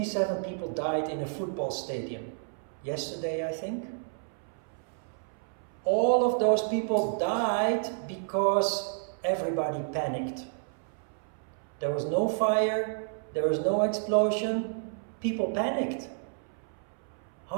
people died in a football stadium. Yesterday, I think. All of those people died because everybody panicked. There was no fire, there was no explosion, people panicked.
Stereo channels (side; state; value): left; silent; 57 dB below the other